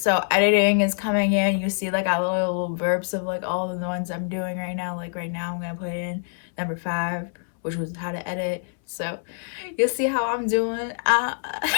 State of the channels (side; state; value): right; silent; 62 dB below the other